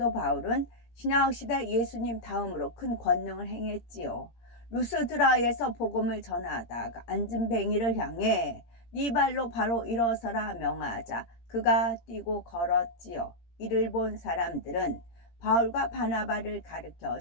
신약시대 예수님 다음으로 큰 권능을 행했지요. 루스드라에서 복음을 전하다가 앉은 뱅이를 향해 네 발로 바로 일어서라 명하자 그가 뛰고 걸었지요. 이를 본 사람들은 바울과 바나바를 가르쳐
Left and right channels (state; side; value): late; right; 17 ms